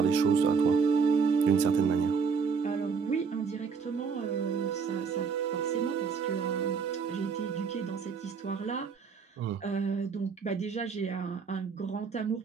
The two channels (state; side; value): quieter; left; 5.7 dB